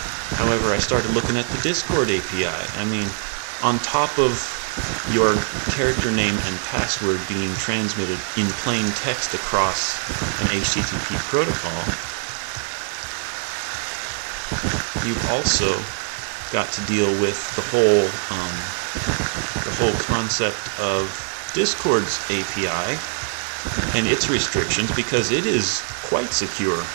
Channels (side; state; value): left; silent; digital silence